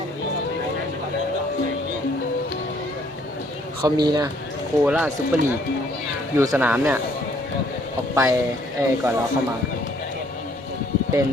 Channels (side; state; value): both; normal; correlation 0.63